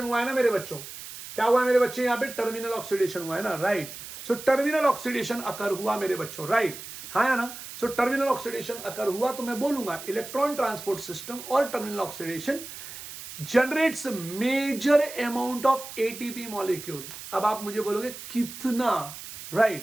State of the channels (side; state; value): right; noise; hiss, 12 dB below the sound